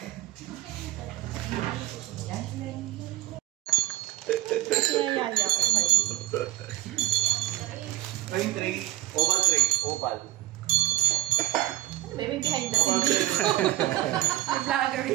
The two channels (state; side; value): quieter; left; 16.5 dB